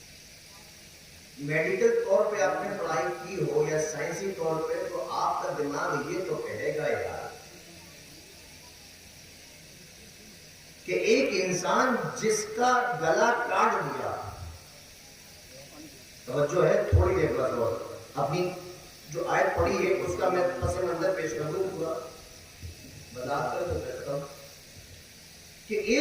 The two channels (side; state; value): both; identical; correlation 1.00